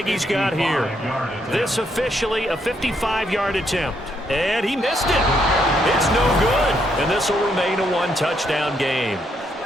he's got here. This officially a 55-yard attempt. And he missed it. It's no good. And this will remain a 1-touchdown game.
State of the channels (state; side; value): normal; both; correlation 0.75